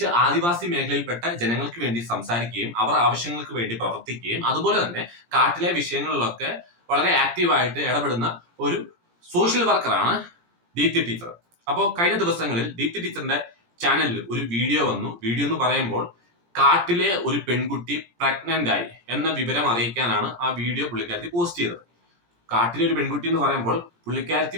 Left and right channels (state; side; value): late; left; 17 ms